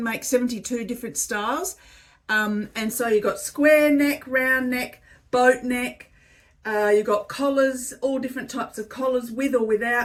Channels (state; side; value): identical; both; correlation 1.00